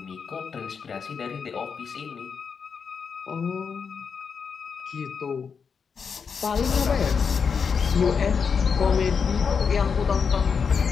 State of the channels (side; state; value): right; quieter; 6.0 dB